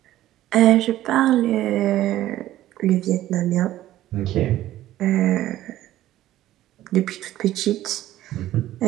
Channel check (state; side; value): quieter; left; 14.1 dB